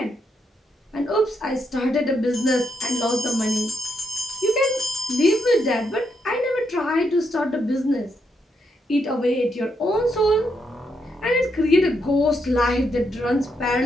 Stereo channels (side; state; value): both; normal; correlation 0.79